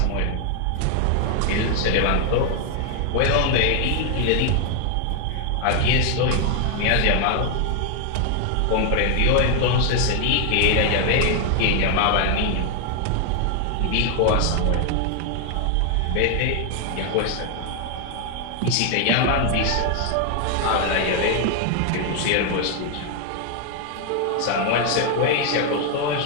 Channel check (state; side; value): different; both; correlation 0.00